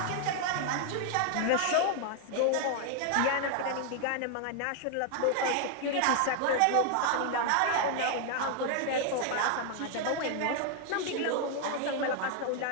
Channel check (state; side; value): different; both; correlation 0.00